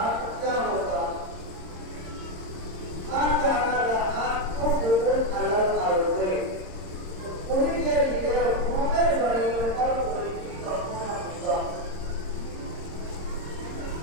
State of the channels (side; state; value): left; late; 26 ms